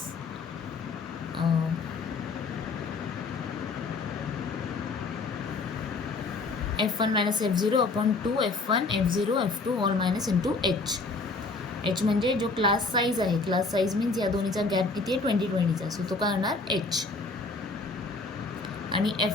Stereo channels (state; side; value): quieter; right; 3.8 dB